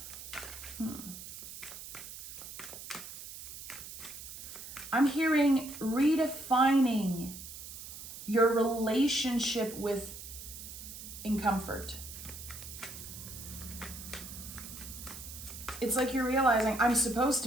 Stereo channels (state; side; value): noise; right; hiss, 12 dB below the sound